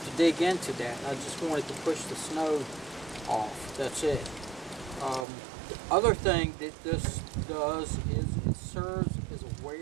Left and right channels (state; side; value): drops out; left; at 5.2 s